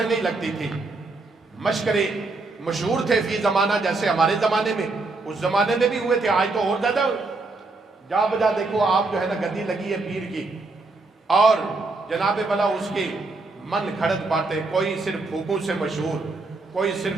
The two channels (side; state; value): left; quieter; 3.5 dB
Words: نہیں لگتی تھی، مشکرے مشہور تھے فی زمانہ، جیسے ہمارے زمانے میں، اس زمانے میں بھی ہوئے تھے، آج تو اور زیادہ جا بجا دیکھو آپ جو ہے نا گدی لگی ہے پیر کی، اور جناب بلا اس کی من گھڑت باتیں، کوئی صرف پھوکوں سے مشہور، کوئی